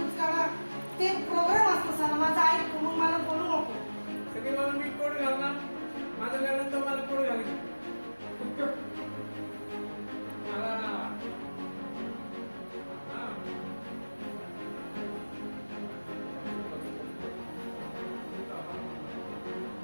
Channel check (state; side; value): inverted; both; correlation -1.00